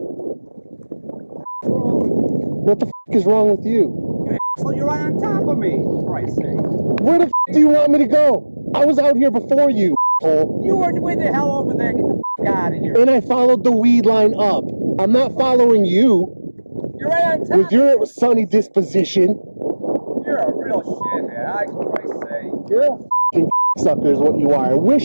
What the f*** is wrong with you? You're right on top of me, for Christ's sake. Where the f*** do you want me to go? I was out here before you, asshole. You were way the hell over there. Get the f*** out of here. And I followed the weed line up. I'm not following you. You're right on top. With your sunny disposition. You're a real shithead, for Christ's sake. You're a f***ing sucker is what you are. I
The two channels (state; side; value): inverted; both; correlation -1.00